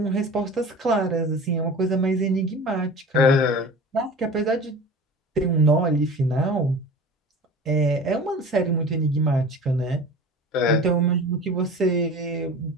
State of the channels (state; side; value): normal; both; correlation 0.38